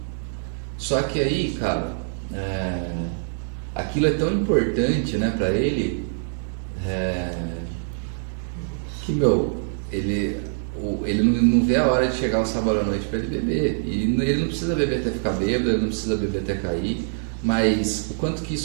Só que aí, cara, aquilo é tão importante, né, pra ele, que, ele não vê a hora de chegar o sábado à noite para ele beber. E ele não precisa beber até ficar bêbado, ele não precisa beber até cair, mas o quanto que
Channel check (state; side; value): silent; left; digital silence